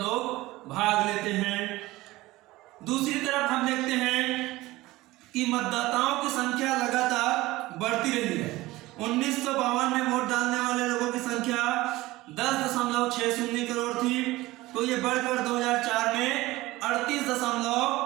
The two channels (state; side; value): quieter; left; 18.8 dB